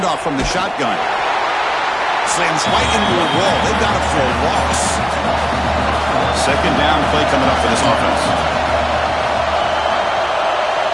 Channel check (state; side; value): identical; both; correlation 1.00